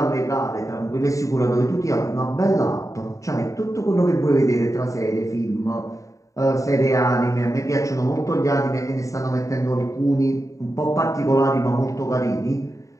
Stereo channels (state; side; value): late; right; 0.16 ms